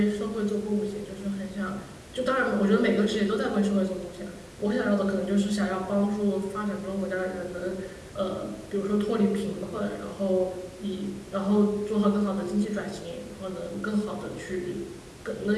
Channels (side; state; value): both; identical; correlation 1.00